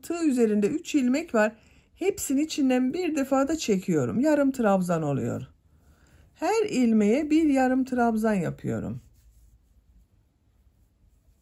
üzerinde 3 ilmek var. Hepsini içinden bir defada çekiyorum. Yarım trabzan oluyor. Her ilmeğe bir yarım trabzan yapıyorum.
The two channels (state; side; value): identical; both; correlation 1.00